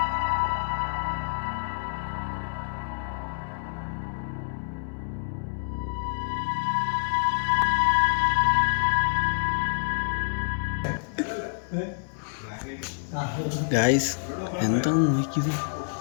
ഗായ്സ്, എന്താന്ന് നോക്കിയത്?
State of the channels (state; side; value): silent; right; 60 dB below the other